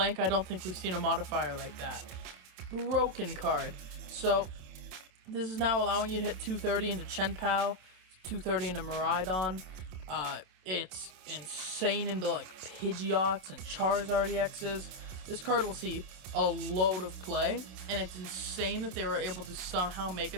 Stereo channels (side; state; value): left; late; 27 ms